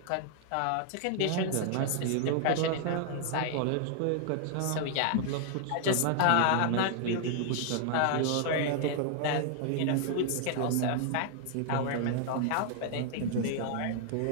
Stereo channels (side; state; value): both; different; correlation 0.00